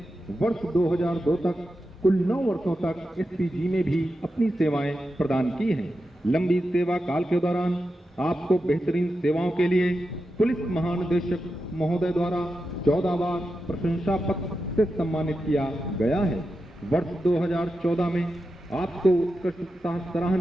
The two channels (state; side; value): normal; both; correlation 0.89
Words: वर्ष 2002 तक कुल 9 वर्षों तक एसपीजी में भी अपनी सेवाएं प्रदान की हैं। लंबी सेवा काल के दौरान आपको बेहतरीन सेवाओं के लिए पुलिस महानिदेशक महोदय द्वारा 14 बार प्रशंसा पत्र से सम्मानित किया गया है। वर्ष 2014 में आपको उत्कृष्ट